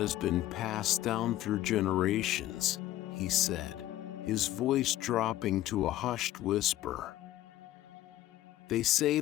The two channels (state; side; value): quieter; right; 14.4 dB